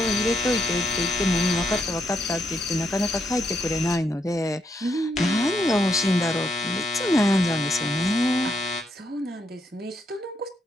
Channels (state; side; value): normal; both; correlation 0.77